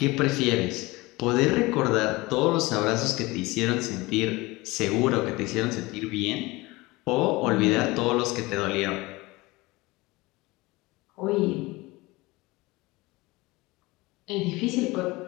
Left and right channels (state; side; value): quieter; right; 22.0 dB